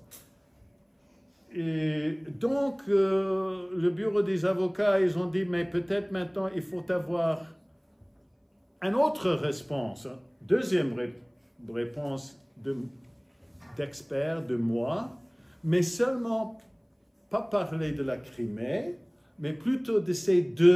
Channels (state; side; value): identical; both; correlation 1.00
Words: Et donc, le bureau des avocats, ils ont dit, mais peut-être maintenant, il faut avoir une autre réponse, deuxième réponse d'experts, de moi, mais seulement pas parler de la Crimée, mais plutôt de ces